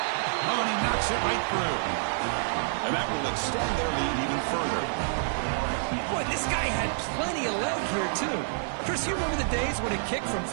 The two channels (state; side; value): silent; left; 59 dB below the other